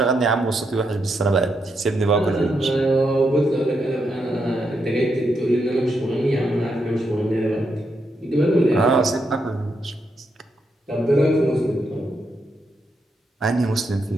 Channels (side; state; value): both; normal; correlation 0.81